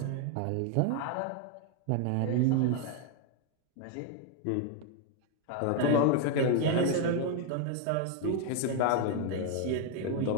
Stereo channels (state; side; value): different; both; correlation 0.00